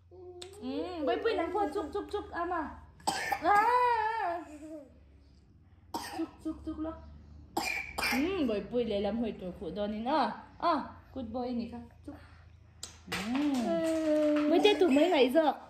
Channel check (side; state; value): both; identical; correlation 1.00